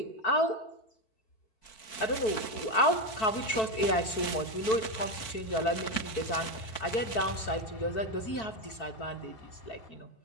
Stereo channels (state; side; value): late; right; 4.5 ms